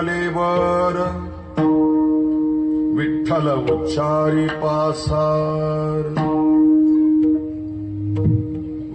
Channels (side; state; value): both; identical; correlation 1.00